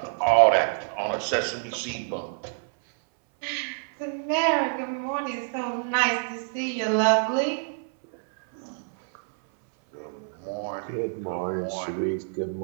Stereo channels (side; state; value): left; silent; 60 dB below the other